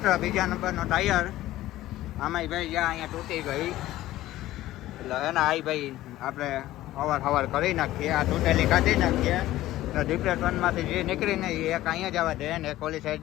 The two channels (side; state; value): right; quieter; 15.4 dB